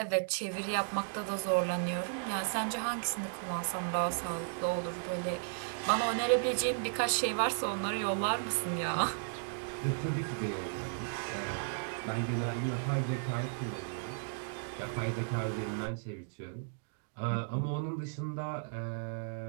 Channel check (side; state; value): left; silent; digital silence